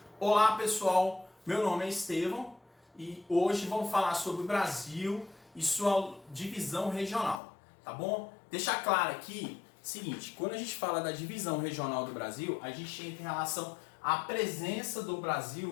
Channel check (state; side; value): drops out; right; at 7.4 s